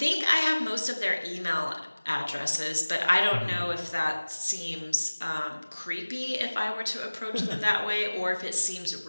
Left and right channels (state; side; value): inverted; both; correlation -1.00